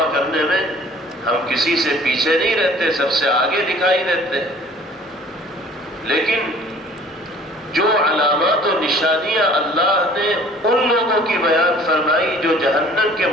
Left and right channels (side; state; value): both; normal; correlation 0.51